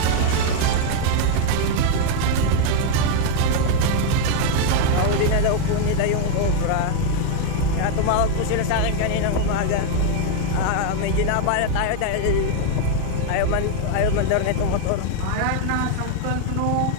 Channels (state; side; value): different; both; correlation 0.00